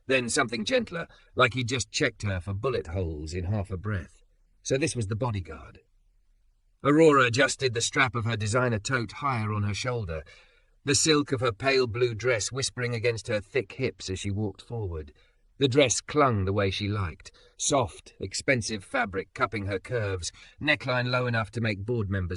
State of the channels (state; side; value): identical; both; correlation 1.00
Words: then something gentler, like he'd just checked her for bullet holes in half a breath. So this was the bodyguard. Aurora adjusted the strap of her designer tote higher on her shoulder, the silk of her pale blue dress whispering against her thick hips as she walked forward. The dress clung the way she liked, soft, expensive fabric cupping her curves, neckline low enough to make board